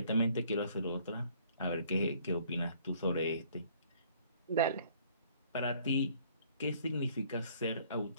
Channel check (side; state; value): both; inverted; correlation -0.59